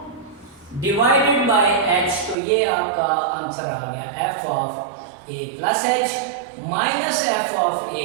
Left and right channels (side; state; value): left; drops out; at 2.4 s